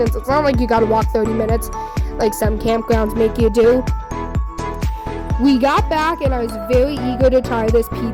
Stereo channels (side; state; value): both; identical; correlation 1.00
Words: It's not like you gotta walk 30 minutes, like some campgrounds make you do. We got back, and I was very eager to try this